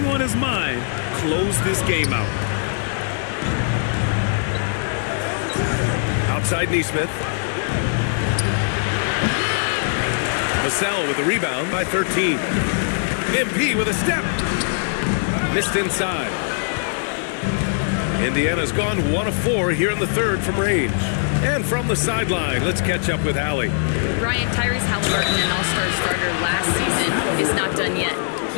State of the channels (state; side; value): silent; right; digital silence